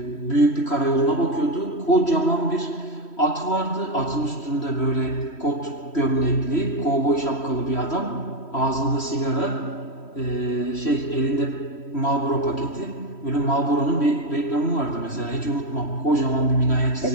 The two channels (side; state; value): right; late; 3.1 ms